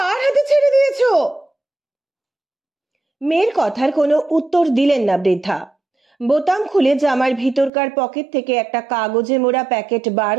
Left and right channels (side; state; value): left; drops out; at 7.7 s